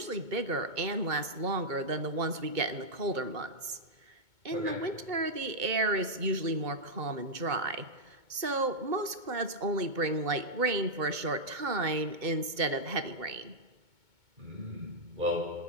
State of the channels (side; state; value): left; late; 2.2 ms